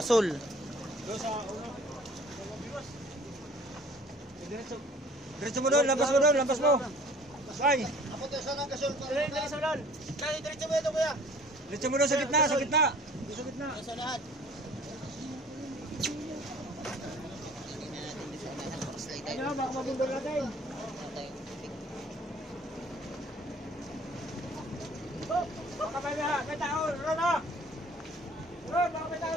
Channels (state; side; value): normal; both; correlation 0.51